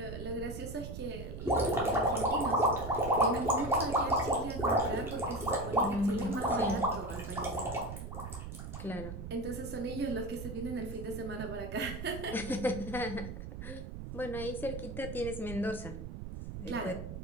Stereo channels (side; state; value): right; noise; rumble, 8 dB below the sound